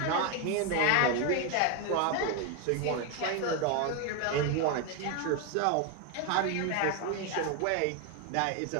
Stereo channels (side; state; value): both; different; correlation 0.01